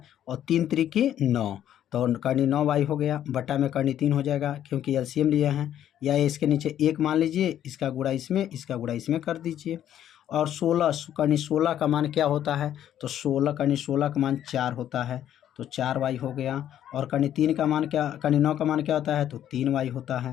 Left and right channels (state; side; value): quieter; right; 10.9 dB